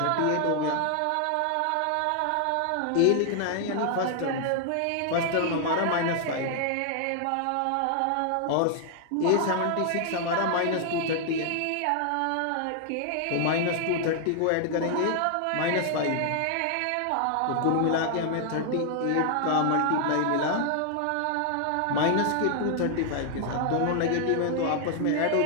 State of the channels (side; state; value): both; different; correlation 0.00